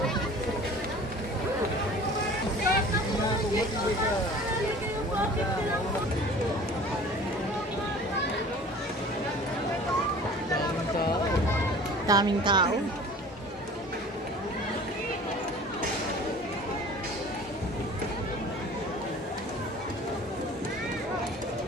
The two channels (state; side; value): normal; both; correlation 0.44